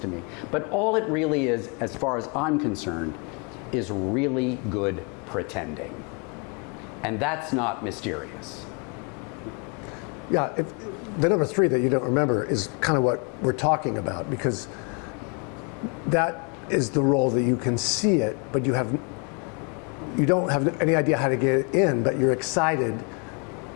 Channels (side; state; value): right; quieter; 34.7 dB